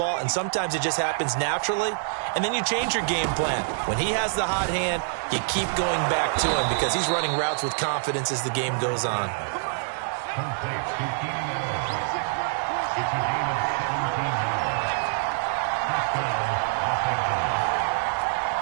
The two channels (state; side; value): silent; left; 61 dB below the other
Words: and sometimes it just happens naturally. And then you change your game plan. When he has the hot hand, you keep going back to him because he's running routes with confidence as the game goes on.